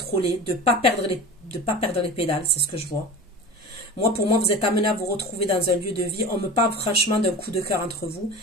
de pas perdre les pédales. C'est ce que je vois. Moi, pour moi, vous êtes amené à vous retrouver dans un lieu de vie. On me parle franchement d'un coup de cœur entre vous.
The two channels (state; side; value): normal; both; correlation 0.33